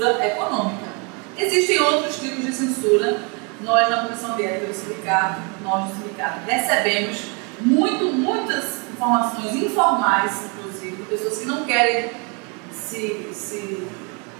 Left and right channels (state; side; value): quieter; left; 32.5 dB